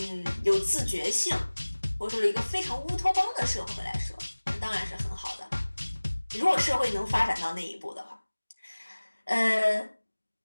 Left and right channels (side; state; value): both; inverted; correlation -1.00